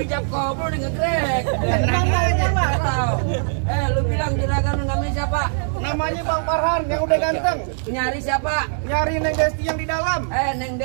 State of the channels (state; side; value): silent; left; digital silence